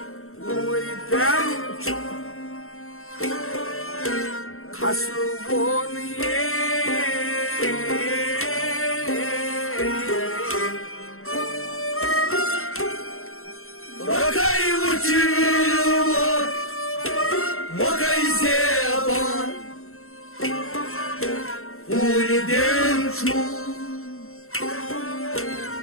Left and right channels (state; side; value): late; right; 0.62 ms